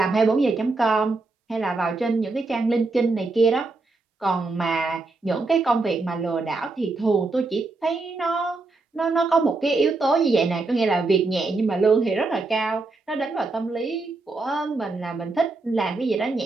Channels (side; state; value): left; quieter; 3.6 dB